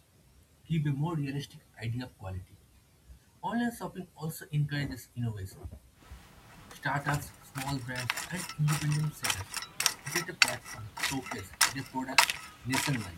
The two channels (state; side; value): identical; both; correlation 1.00